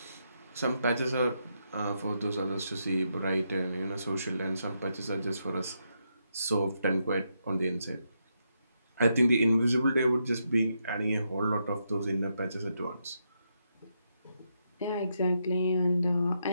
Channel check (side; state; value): both; inverted; correlation -0.81